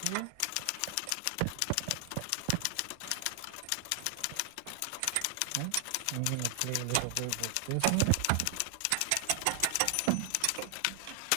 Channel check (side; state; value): both; different; correlation 0.00